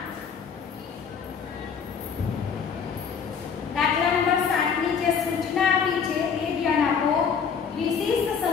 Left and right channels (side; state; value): right; quieter; 6.5 dB